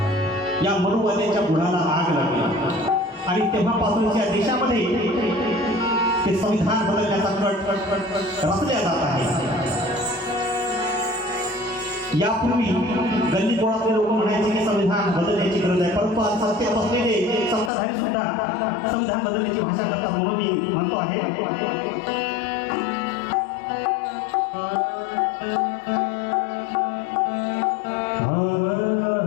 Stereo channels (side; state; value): right; drops out; at 17.7 s